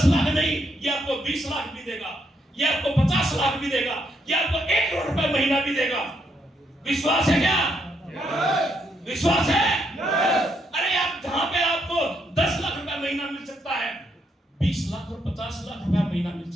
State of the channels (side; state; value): both; normal; correlation 0.76